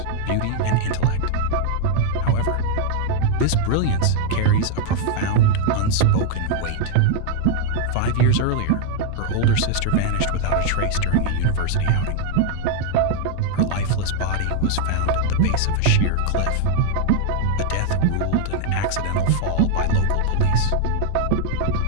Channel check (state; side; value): different; both; correlation 0.00